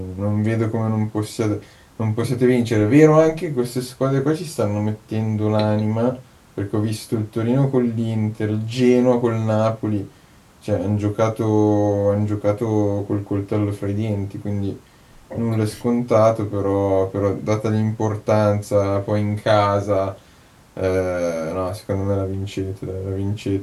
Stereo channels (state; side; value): identical; both; correlation 1.00